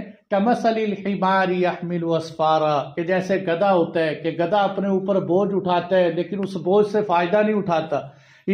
कमसलिल हिमारी यहमिलु अस्फारा, कि जैसे गधा होता है कि गधा अपने ऊपर बोझ उठाता है लेकिन उस बोझ से फायदा नहीं उठाता,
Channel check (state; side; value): identical; both; correlation 1.00